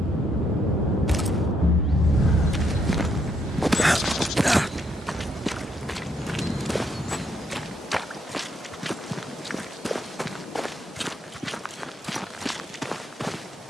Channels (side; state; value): both; normal; correlation 0.73